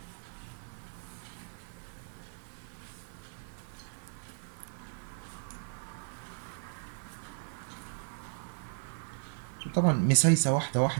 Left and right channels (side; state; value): left; silent; 54 dB below the other